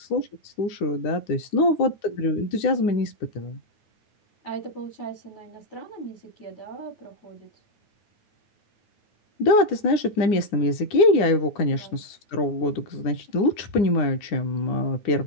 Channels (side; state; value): right; late; 9.8 ms